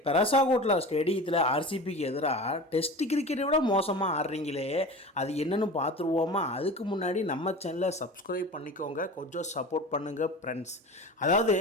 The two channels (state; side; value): normal; both; correlation 0.34